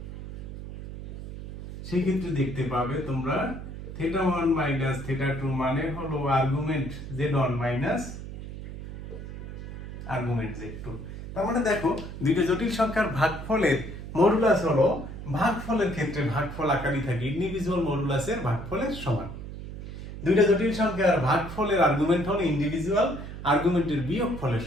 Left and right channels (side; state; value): right; noise; hum, 10 dB below the sound